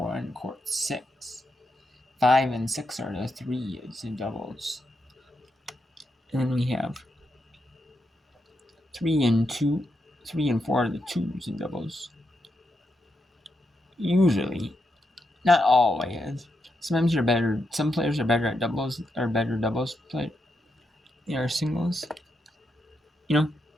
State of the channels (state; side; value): normal; both; correlation 0.83